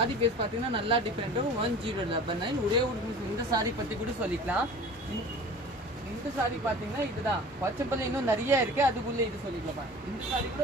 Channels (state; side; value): normal; both; correlation 0.41